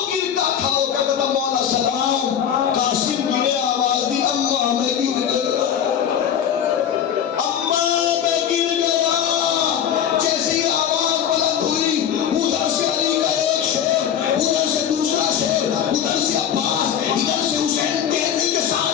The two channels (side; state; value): right; quieter; 9.0 dB